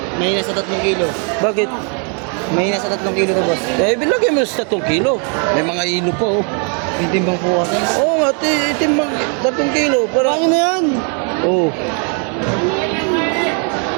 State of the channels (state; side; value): quieter; left; 39.5 dB